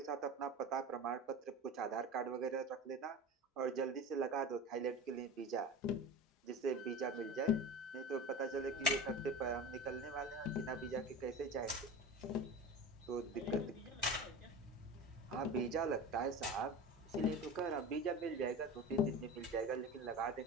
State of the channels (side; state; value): both; normal; correlation 0.30